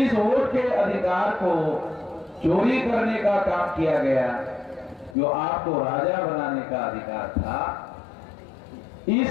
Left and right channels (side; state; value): right; drops out; at 5.2 s